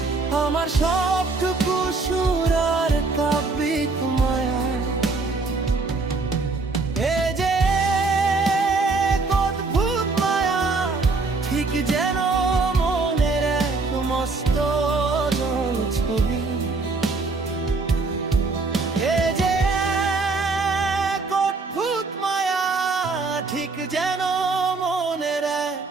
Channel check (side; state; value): left; quieter; 3.9 dB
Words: আমার সবটুকু সুর আর কাব্যিক মায়ায়। এ যে এক অদ্ভুত মায়া, ঠিক যেন মনের এক মস্ত ছবি। এ যে এক অদ্ভুত মায়া, ঠিক যেন মনের এক